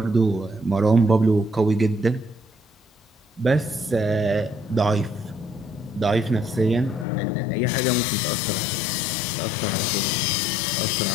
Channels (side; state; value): right; drops out; at 7.1 s